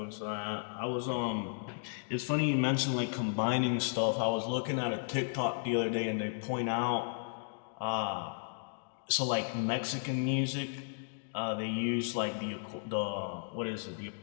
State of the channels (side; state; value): right; silent; digital silence